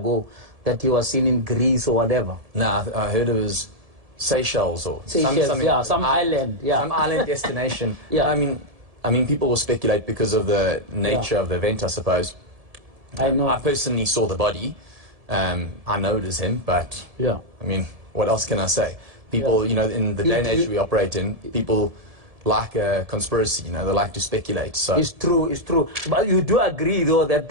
that he was seen in Greece or whatever. No, I heard it was Seychelles or some island. Yeah, some island destination. Yeah. I mean, people will speculate because of the nature of the event, I suppose. I know. I personally saw the body. I know it is him, but yeah. I mean, what else can I say? People, you know, in the day and age we operate in, people like a conspiracy, you know, they like to speculate. So it's true, it's true. But you do agree, though, that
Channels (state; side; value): late; left; 1.7 ms